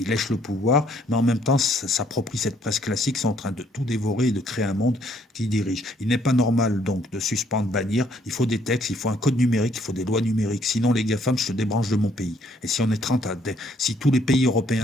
lèche le pouvoir, mais en même temps s'approprient cette presse classique, sont en train de tout dévorer et de créer un monde qui dirige. Il n'est pas normal, donc, de suspendre, bannir. Il faut des textes, il faut un code numérique, il faut des lois numériques. Sinon, les GAFAM, je te débranche de mon pays. Et si on est 30 à... Si tous les pays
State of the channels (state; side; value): normal; both; correlation 0.66